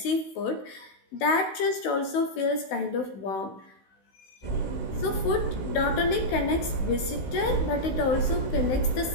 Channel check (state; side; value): late; right; 16 ms